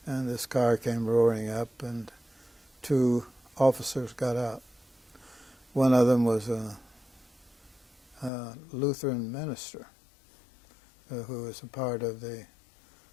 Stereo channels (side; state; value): right; drops out; at 8.3 s